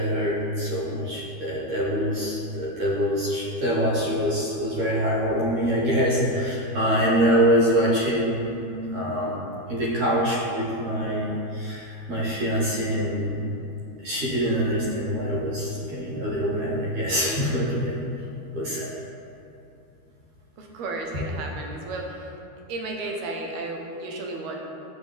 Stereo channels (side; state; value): left; late; 13 ms